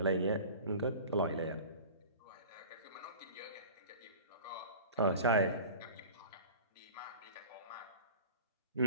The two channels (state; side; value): inverted; both; correlation -0.39